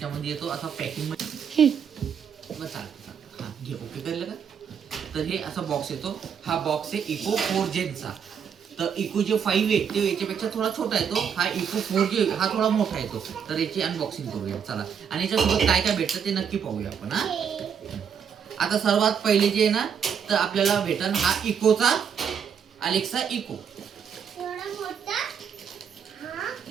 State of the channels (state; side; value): quieter; left; 7.5 dB